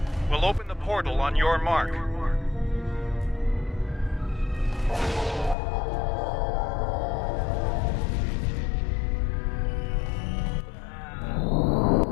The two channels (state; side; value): drops out; right; at 5.6 s